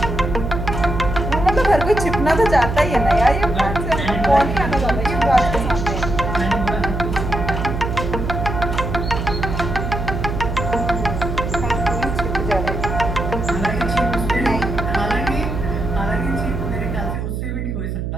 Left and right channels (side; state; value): right; noise; hum, 3 dB below the sound